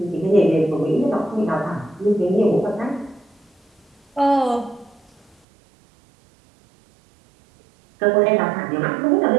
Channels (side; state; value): left; drops out; at 5.4 s